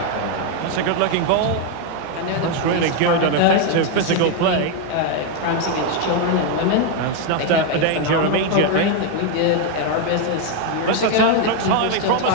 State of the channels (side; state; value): both; different; correlation 0.01